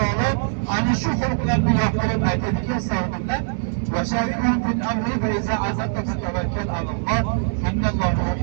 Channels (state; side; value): silent; left; 64 dB below the other